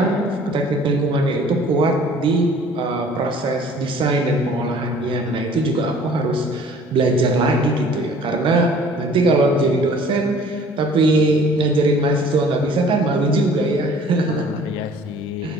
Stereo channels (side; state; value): both; normal; correlation 0.52